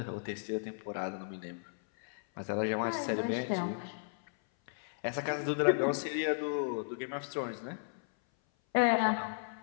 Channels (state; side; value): silent; right; 55 dB below the other